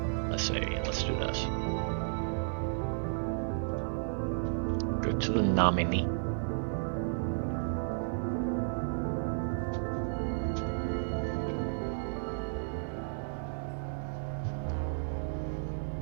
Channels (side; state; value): left; silent; digital silence